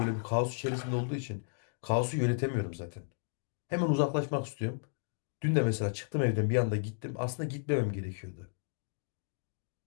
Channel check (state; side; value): silent; right; digital silence